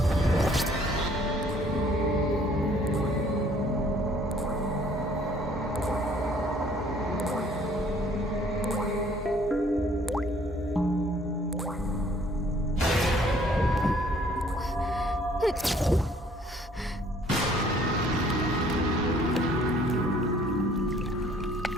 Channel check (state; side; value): normal; both; correlation 0.59